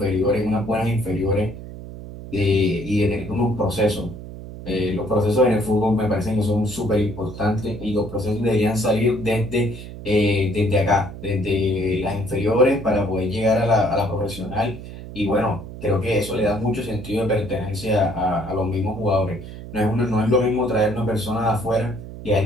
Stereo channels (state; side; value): noise; right; hum, 12 dB below the sound